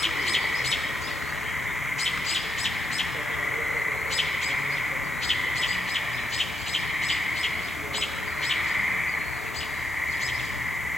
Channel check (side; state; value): both; normal; correlation 0.83